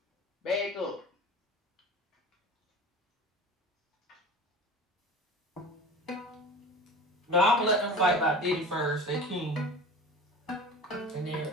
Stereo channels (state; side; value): normal; both; correlation 0.35